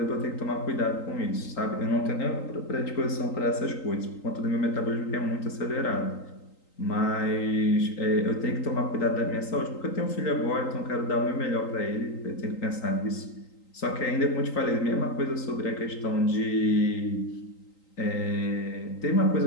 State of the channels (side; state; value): right; late; 3.8 ms